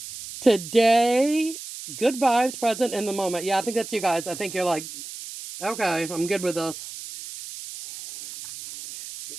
Today, good vibes, present in the moment. Yeah, I think that's you guys. I think you're like, okay, I'm good with this.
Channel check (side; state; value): right; noise; hiss, 11 dB below the sound